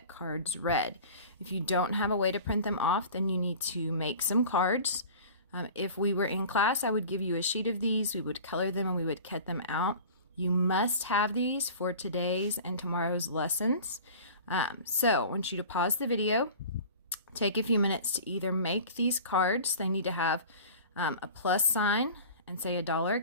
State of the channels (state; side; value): inverted; both; correlation -0.40